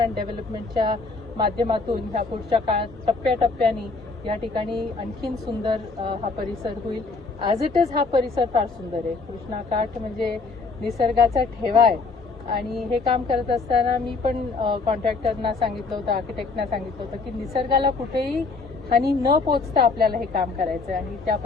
डेव्हलपमेंटच्या माध्यमातून ह्या पुढच्या काळात टप्प्याटप्प्याने या ठिकाणी आणखीन सुंदर हा परिसर होईल. ॲज इट इज हा परिसर फार सुंदर आहे. कृष्णाकाठ म्हणजे निसर्गाचा ठेवा आहे. आणि हे काम करत असताना मी पण कॉन्ट्रॅक्टरना सांगितलं होतं, आर्किटेक्टना सांगितलं होतं की निसर्गाला कुठेही हानी न पोचता आपल्याला हे काम करायचं आहे. आणि त्या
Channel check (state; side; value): quieter; right; 4.1 dB